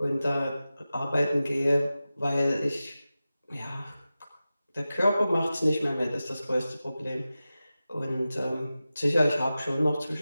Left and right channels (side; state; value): both; inverted; correlation -0.94